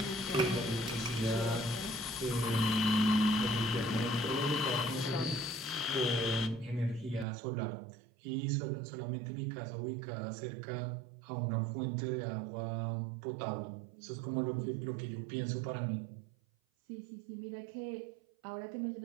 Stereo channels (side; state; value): left; drops out; at 7.2 s